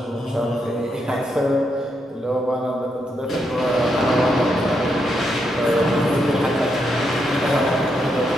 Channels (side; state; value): both; normal; correlation 0.80